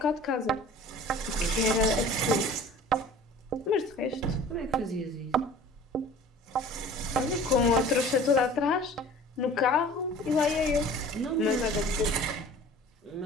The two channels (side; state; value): both; normal; correlation 0.45